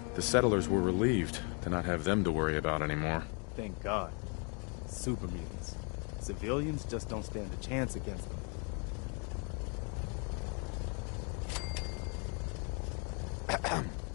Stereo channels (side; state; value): right; quieter; 37.1 dB